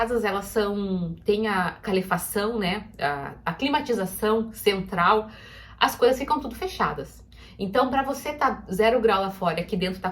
elas tem a calefação, né, a climatização central, as coisas ficam tudo fechadas. Então, para você tá 0 grau lá fora e aqui dentro tá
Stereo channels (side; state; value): both; identical; correlation 1.00